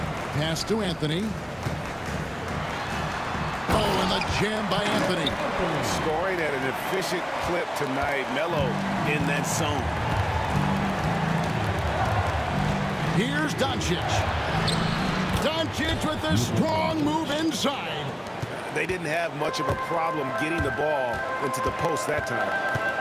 Pass to Anthony. Oh, and the jam by Anthony. Scoring at an efficient clip tonight. Melo in that zone. Here's Doncic. Doncic with a strong move inside. They didn't have much of a problem getting the ball into the post that time.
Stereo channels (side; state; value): both; identical; correlation 1.00